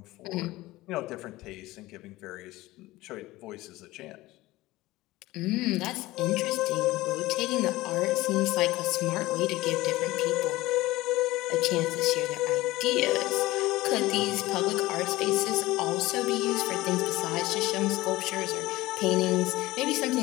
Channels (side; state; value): right; quieter; 18.5 dB